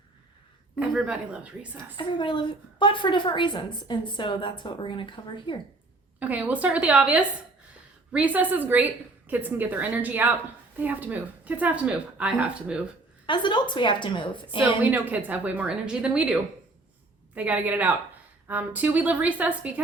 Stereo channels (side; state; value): left; quieter; 3.1 dB